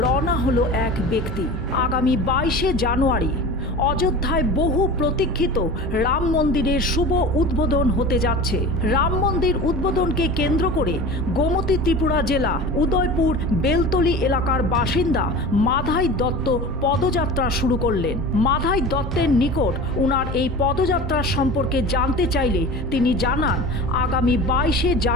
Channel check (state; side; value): normal; both; correlation 0.35